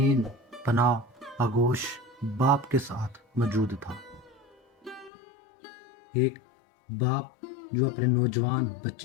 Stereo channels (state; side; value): drops out; right; at 5.1 s